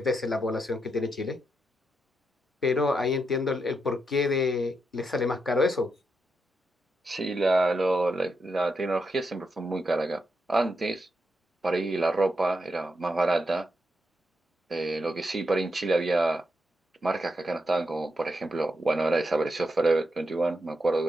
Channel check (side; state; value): both; normal; correlation 0.83